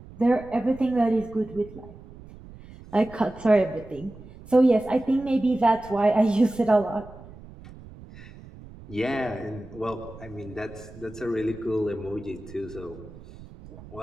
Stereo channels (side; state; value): right; noise; rumble, 18 dB below the sound